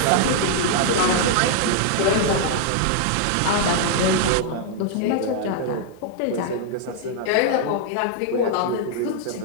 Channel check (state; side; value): different; both; correlation -0.01